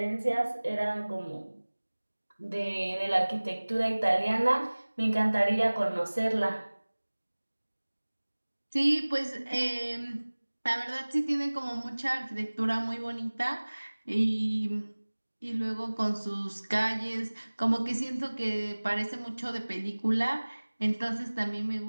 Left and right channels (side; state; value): both; inverted; correlation -1.00